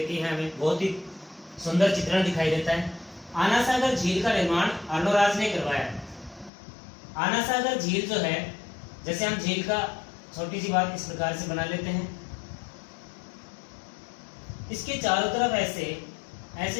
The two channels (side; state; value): right; drops out; at 6.5 s